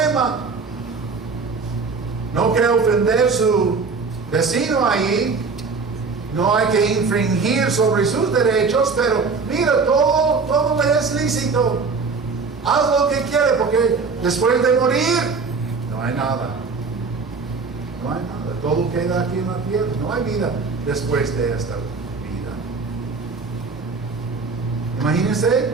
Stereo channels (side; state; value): left; quieter; 4.6 dB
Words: No quiere ofender a su vecino ahí. No hay que infringir sobre sus derechos, pero mira, todo le es lícito. Haz lo que quiere, porque después de morir no hay nada. No hay nada. Todo queda aquí en la tierra. No hay vida después de esta vida. Imagínense,